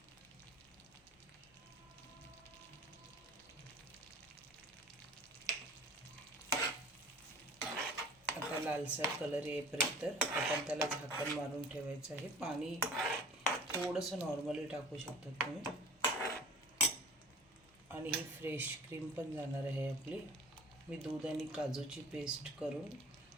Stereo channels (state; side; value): normal; both; correlation 0.45